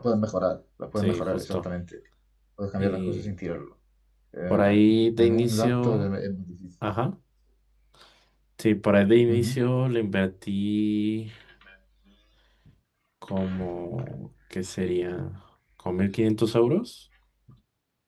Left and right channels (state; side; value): identical; both; correlation 1.00